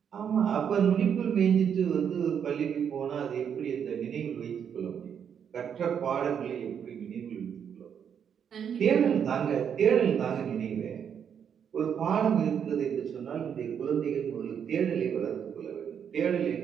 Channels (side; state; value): left; quieter; 7.9 dB